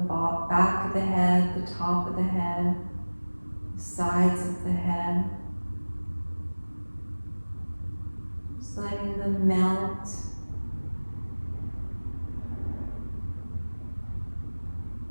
back of the head, the top of the head, the sides of the head. Just letting them melt.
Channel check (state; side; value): inverted; both; correlation -1.00